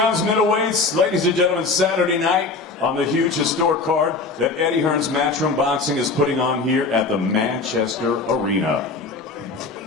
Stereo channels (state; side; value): quieter; right; 3.9 dB